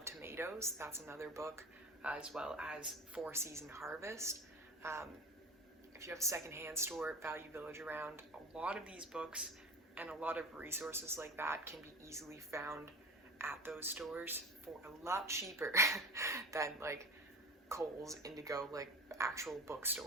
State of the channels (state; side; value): normal; both; correlation 0.33